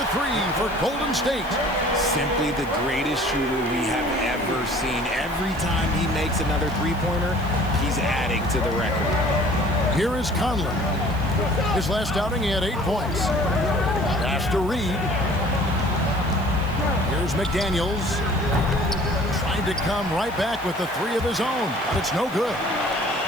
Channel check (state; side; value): noise; right; hiss, 22 dB below the sound